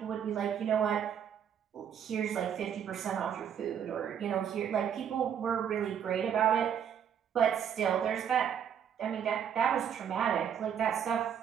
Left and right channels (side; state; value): left; quieter; 8.5 dB